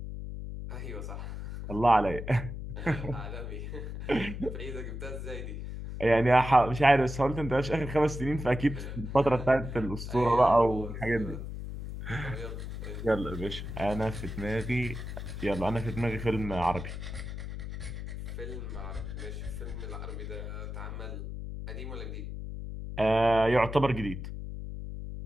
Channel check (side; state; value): left; noise; hum, 7 dB below the sound